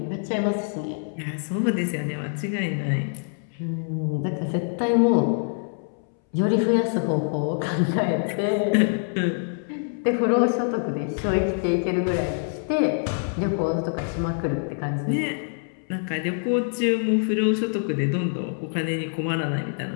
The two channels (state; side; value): silent; right; 62 dB below the other